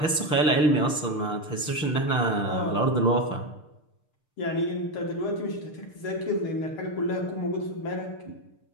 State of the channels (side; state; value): right; late; 6.7 ms